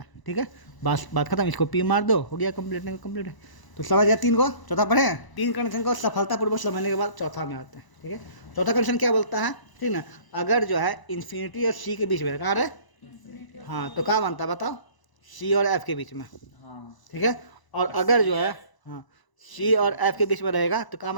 है, ठीक है। बस बात खत्म, इसको पी मार दो, हो गया कंप्लीट, नहीं कंप्लीट है। तो समझ गया तीन को, चौथा पढ़े हैं। तीन कंडीशन को सफलतापूर्वक समझने के बाद चौथा में आते हैं, ठीक है। चौथा कंडीशन क्या बोलता है, ठीक ना, अगर जो है इन्फिनिटी और सी के बीच में, कहाँ है, हाँ, तो क्या बनता है बताओ, सी और एफ के बीच में, ठीक है। और अगर जो है हाँ सी और एफ के बीच में रहेगा तो क्या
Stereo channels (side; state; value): right; late; 1.0 ms